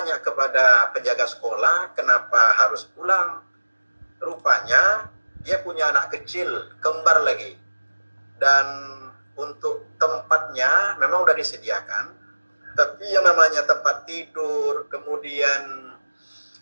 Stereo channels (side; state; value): both; inverted; correlation -1.00